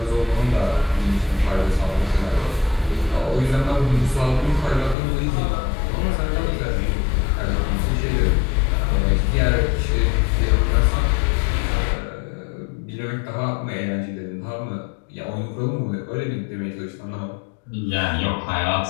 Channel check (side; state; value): right; drops out; at 5.0 s